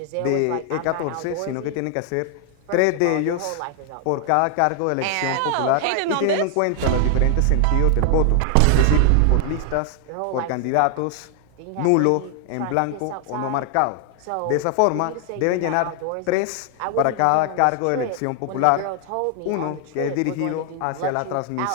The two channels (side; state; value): both; different; correlation 0.00